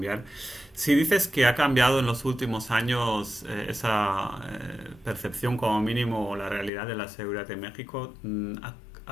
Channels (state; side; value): drops out; right; at 6.7 s